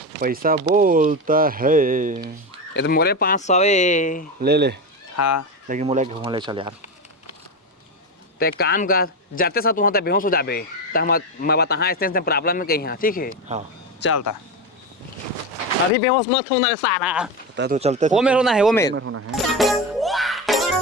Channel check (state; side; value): normal; both; correlation 0.17